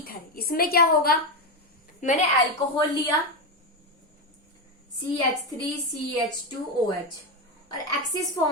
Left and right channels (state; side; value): normal; both; correlation 0.10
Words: इसमें क्या होगा, मैंने एल्कोहल लिया CH3CH2OH और एक्सिस